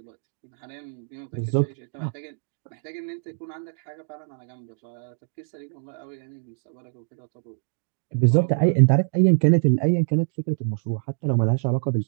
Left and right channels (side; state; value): left; silent; digital silence